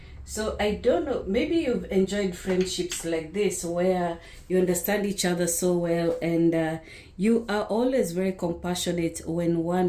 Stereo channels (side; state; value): both; identical; correlation 1.00